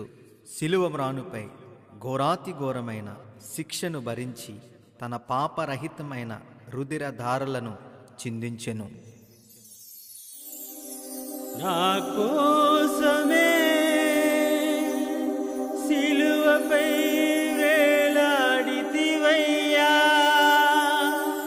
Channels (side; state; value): both; identical; correlation 1.00